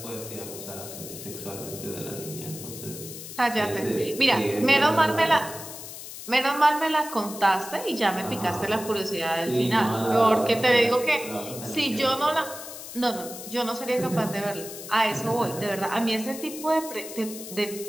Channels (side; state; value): left; noise; hiss, 11 dB below the sound